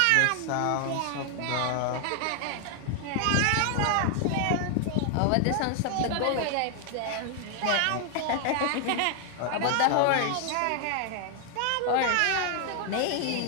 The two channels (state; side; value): different; both; correlation 0.00